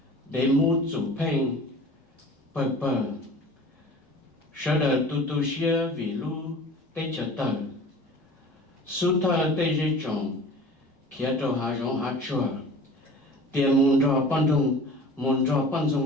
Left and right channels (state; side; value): normal; both; correlation 0.42